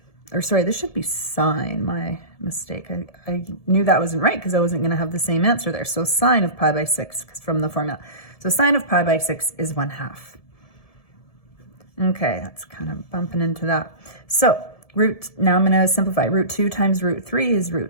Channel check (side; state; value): right; late; 1.7 ms